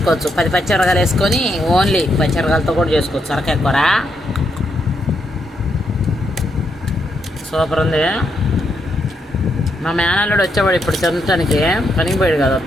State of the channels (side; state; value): both; normal; correlation 0.79